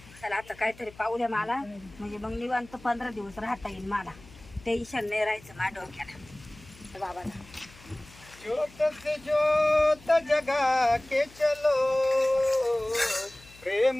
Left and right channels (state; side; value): noise; left; hum, 23 dB below the sound